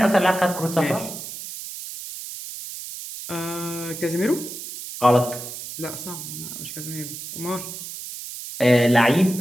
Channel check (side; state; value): right; noise; hiss, 10 dB below the sound